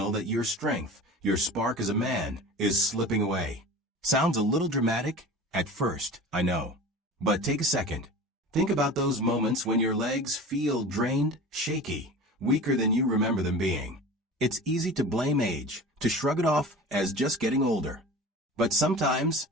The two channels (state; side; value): normal; both; correlation 0.36